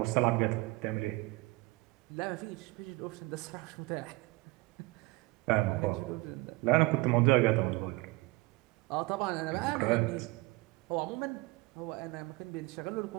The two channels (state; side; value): quieter; left; 22.7 dB